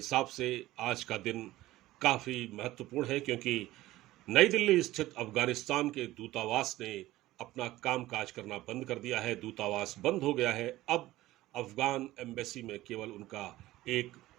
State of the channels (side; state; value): left; quieter; 16.6 dB